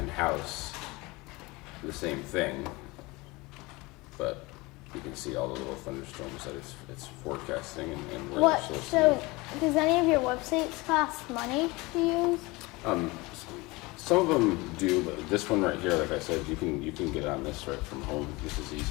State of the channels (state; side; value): quieter; right; 23.4 dB